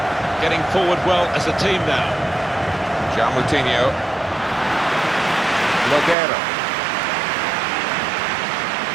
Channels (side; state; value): left; drops out; at 6.2 s